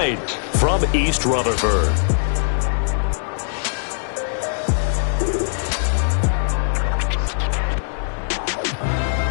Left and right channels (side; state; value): right; silent; 65 dB below the other